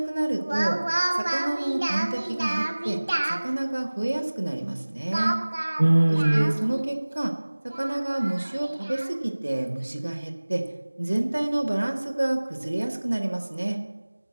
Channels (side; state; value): both; inverted; correlation -1.00